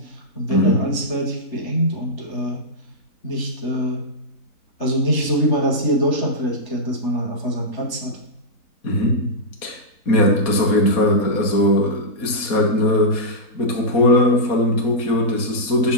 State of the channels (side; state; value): right; late; 4.2 ms